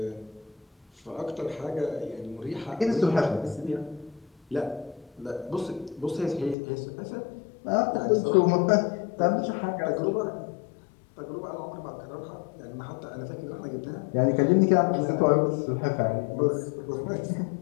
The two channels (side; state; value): right; drops out; at 6.6 s